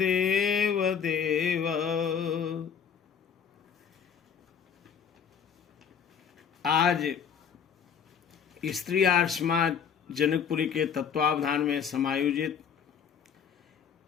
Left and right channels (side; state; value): right; quieter; 7.4 dB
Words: देव। आज स्त्री आर्य समाज जनकपुरी के तत्वावधान में समायोजित